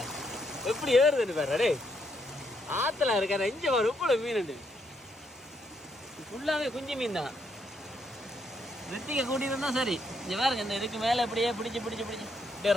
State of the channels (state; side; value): normal; both; correlation 0.75